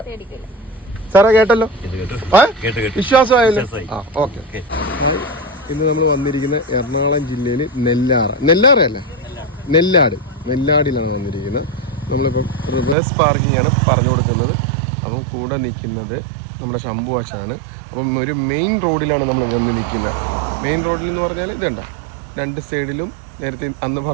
സാറേ കേട്ടല്ലോ? വിശ്വാസമായല്ലോ? ആ ഓക്കെ. ഇന്ന് നമ്മൾ വന്നിരിക്കുന്ന എറണാകുളം ജില്ലയിൽ നെല്ലാറയല്ല, നെല്ലാടിലാണ് വന്നിരിക്കുന്നത്. നമ്മളിപ്പം റിവേഴ്സ് പാർക്കിംഗ് ആണ് പറഞ്ഞു കൊടുക്കുന്നത്. അത് കൂടെ നിൽക്കുന്നത് നമ്മുടെ ശംഭുവാശാണ്. അപ്പം ഒരു മെയിൻ റോഡിലാണ് നമ്മൾ വന്ന് നിൽക്കുന്നത്. മെയിൻ റോഡിൽ എന്ന് പറഞ്ഞാൽ ഇതുണ്ട്, രണ്ട് സൈഡിലും നേരത്തെ അന്ന്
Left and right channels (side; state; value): left; drops out; at 13.0 s